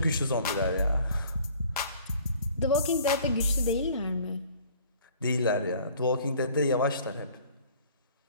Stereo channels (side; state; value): both; inverted; correlation -0.53